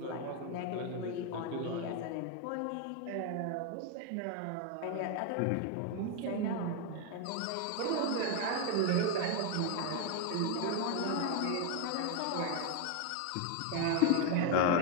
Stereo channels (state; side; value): different; both; correlation 0.01